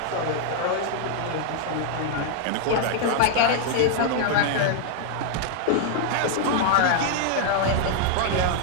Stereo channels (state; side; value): different; both; correlation -0.01